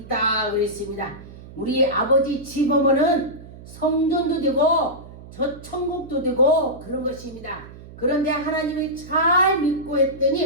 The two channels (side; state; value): right; noise; hum, 17 dB below the sound